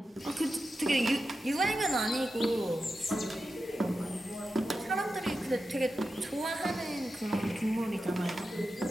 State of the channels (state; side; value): normal; both; correlation 0.91